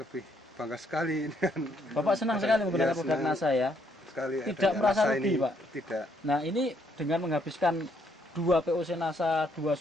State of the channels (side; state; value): both; normal; correlation 0.71